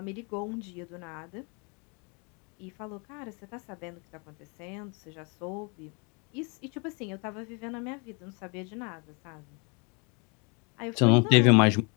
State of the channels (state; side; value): quieter; right; 33.4 dB